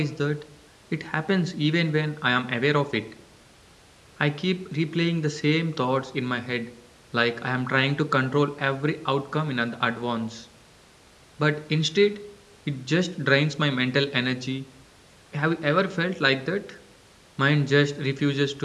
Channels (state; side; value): identical; both; correlation 1.00